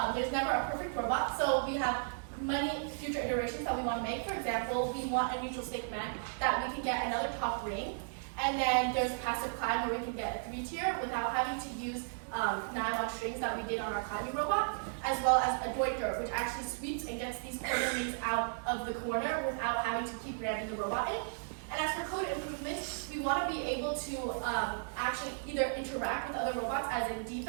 there's never a perfect robot, so we have many future iterations that we want to make. For example, we want a neutral stick man that we can get another top ring, and then there's passive climb where we can get a 3-tier without having to use nylon strings that we did on our climbing robot, as well as a Deuter, which actually sweeps and gets these corner rings out of the corner without having to keep ramming the robot in. And as for code improvements, we want to be able to actually either interact with other robots as in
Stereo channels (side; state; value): left; silent; digital silence